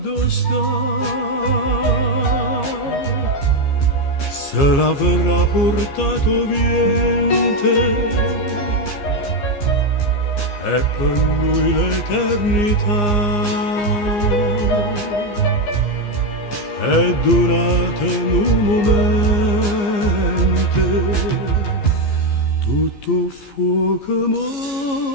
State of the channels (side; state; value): right; late; 15 ms